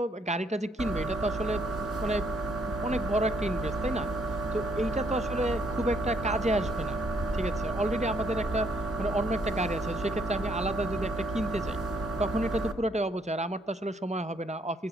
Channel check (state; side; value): normal; both; correlation 0.70